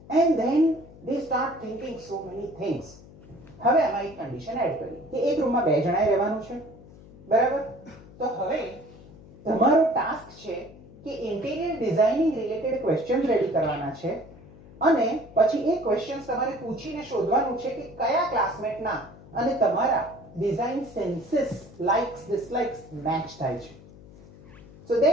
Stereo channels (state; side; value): noise; left; hum, 20 dB below the sound